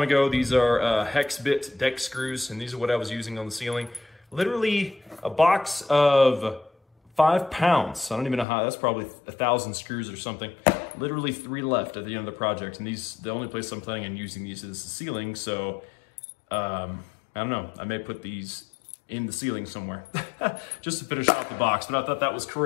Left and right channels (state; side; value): drops out; right; at 8.5 s